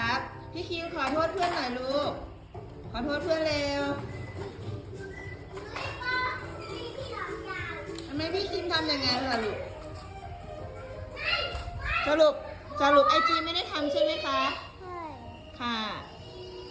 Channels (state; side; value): identical; both; correlation 1.00